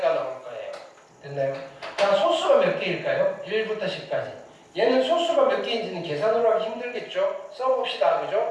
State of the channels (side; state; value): both; identical; correlation 1.00